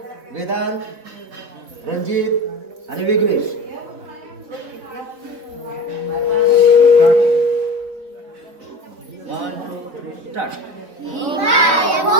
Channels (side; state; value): left; late; 4.1 ms